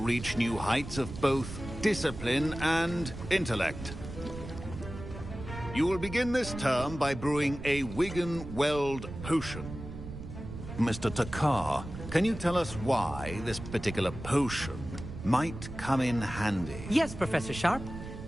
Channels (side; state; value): right; noise; rumble, 10 dB below the sound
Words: new heights of both discipline and intellect. You will begin this term by brewing a Wigan-Weld potion. Mr. Takar, can you tell us why this particular potion might come in handy? Yes, Professor Sharp.